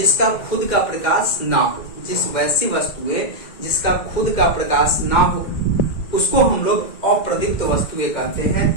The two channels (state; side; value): late; right; 2.1 ms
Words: खुद का प्रकाश ना हो। जिस वैसी वस्तुएं जिसका खुद का प्रकाश ना हो उसको हम लोग अप्रदीप्त वस्तुएं कहते